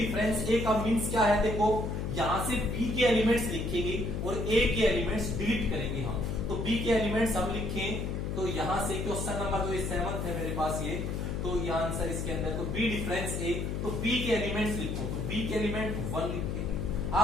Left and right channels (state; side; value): noise; left; hum, 2 dB below the sound